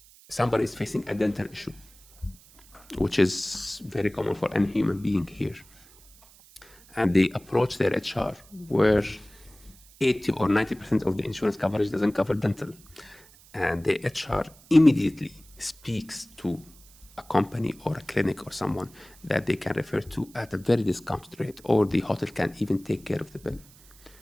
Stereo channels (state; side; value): noise; right; hiss, 25 dB below the sound